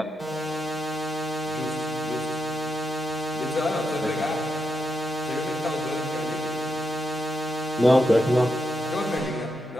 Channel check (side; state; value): both; normal; correlation 0.84